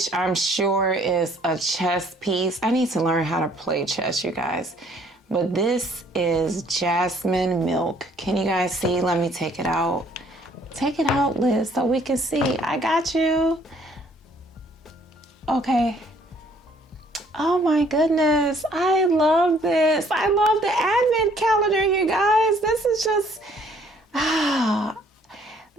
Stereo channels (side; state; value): both; normal; correlation 0.61